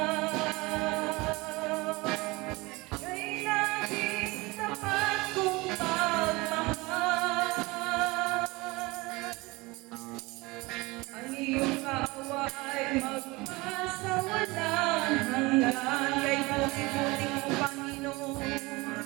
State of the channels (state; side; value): quieter; left; 23.2 dB